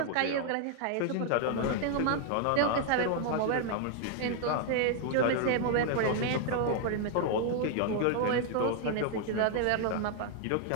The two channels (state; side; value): different; both; correlation 0.00